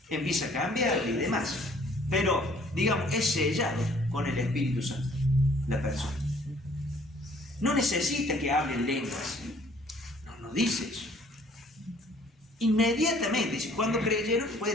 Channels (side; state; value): both; normal; correlation 0.58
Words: Empieza a cambiar y demás. Pero, digamos, es sellado con el Espíritu Santo la persona. No necesita que hablen lenguas. No dice eso. Inmediatamente dice, cuando creyeron,